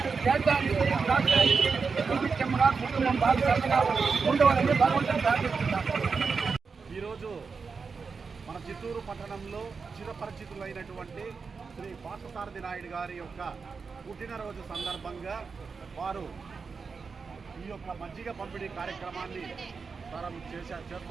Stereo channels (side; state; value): left; quieter; 5.1 dB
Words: దేశానికి రాష్ట్రానికి సుభిక్షంగా కుటుంబం బాగా ఉండవాలని భగవంతుని ప్రార్థిస్తున్నాను. ఈరోజు మన చిత్తూరు పట్టణంలో చిరపరిచితులైనటువంటి శ్రీ పార్థసారథి నాయుడు గారి యొక్క పుట్టినరోజు సందర్భంగా వారు ఈ యొక్క మజ్జిగ పంపిణీ కార్యక్రమాన్ని